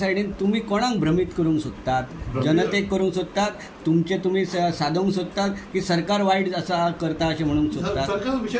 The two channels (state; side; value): identical; both; correlation 1.00